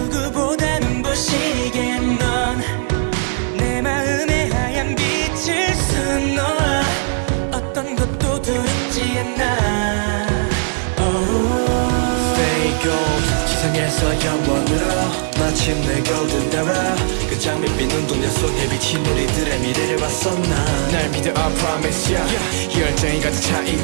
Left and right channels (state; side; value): silent; left; 67 dB below the other